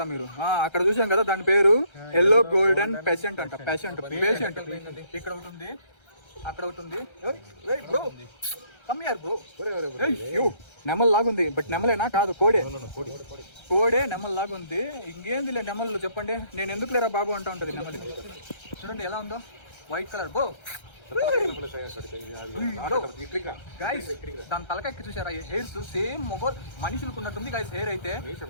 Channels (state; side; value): late; right; 1.3 ms